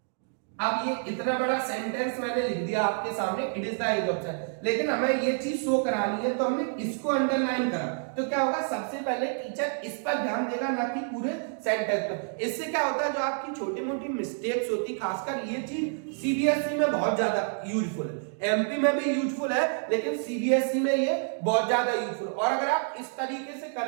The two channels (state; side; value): silent; left; 59 dB below the other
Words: अब ये इतना बड़ा सेंटेंस मैंने लिख दिया आपके सामने, it is the age of science, लेकिन हमें ये चीज शो करानी है तो हमने इसको अंडरलाइन करा। तो क्या होगा, सबसे पहले टीचर इस पर ध्यान देगा, ना कि पूरे सेंटेंस पर। इससे क्या होता है, जो आपकी छोटी मोटी मिस्टेक्स होती, खासकर ये चीज सीबीएसई में बहुत ज्यादा यूजफुल है, एमपी में भी यूजफुल है, लेकिन सीबीएसई में ये बहुत ज्यादा यूजफुल। और अगर आप इस तरीके से